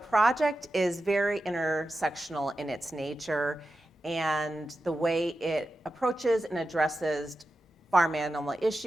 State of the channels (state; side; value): normal; both; correlation 0.91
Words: is very intersectional in its nature and the way it approaches and addresses farm animal